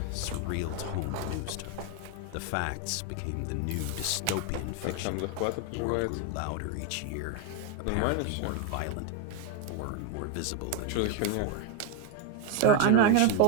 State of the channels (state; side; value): different; both; correlation 0.01